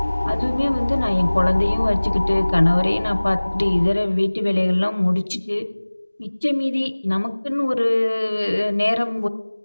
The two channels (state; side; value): inverted; both; correlation -1.00